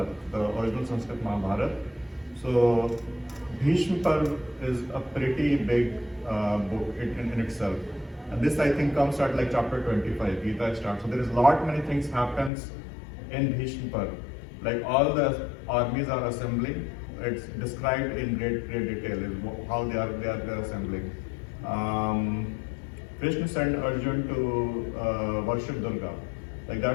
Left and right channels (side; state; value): right; drops out; at 12.5 s